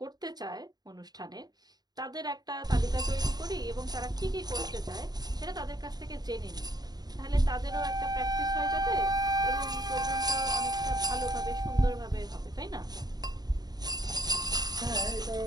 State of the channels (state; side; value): late; left; 0.19 ms